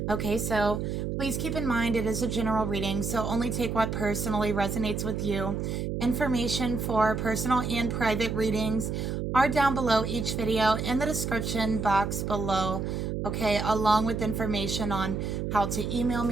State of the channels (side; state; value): right; noise; hum, 2 dB below the sound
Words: Okay, so please keep in mind it is a general reading, so only take what personally resonates with you. Information for personal and private readings are down below each video in the description box below. Okay, along with information on how to email